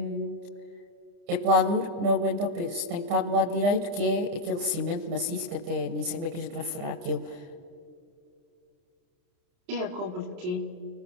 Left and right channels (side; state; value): left; late; 30 ms